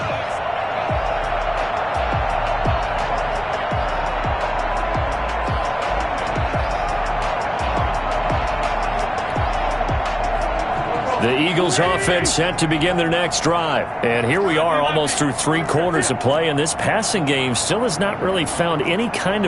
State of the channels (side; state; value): both; identical; correlation 1.00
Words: The Eagles offense set to begin their next drive. And here we are almost through 3 quarters of play, and this passing game still has not really found any kind